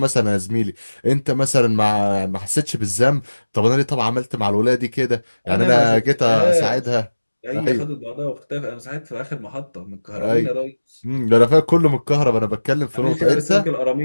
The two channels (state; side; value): inverted; both; correlation -1.00